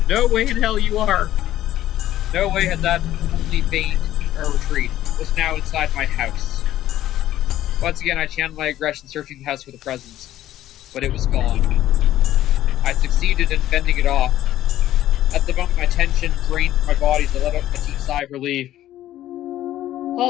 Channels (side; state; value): right; quieter; 13.3 dB